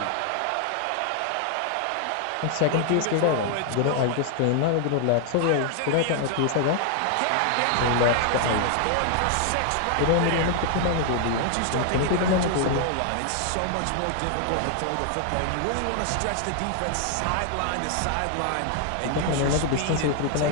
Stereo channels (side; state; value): both; different; correlation 0.00